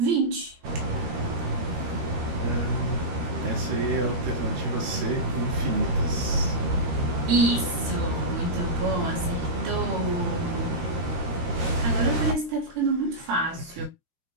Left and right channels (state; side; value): late; left; 13 ms